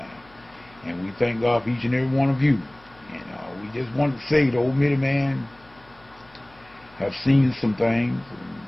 and we thank God for each and every one of you. And we just wanted to say the old Midiman have seen some things, and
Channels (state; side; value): noise; left; hum, 28 dB below the sound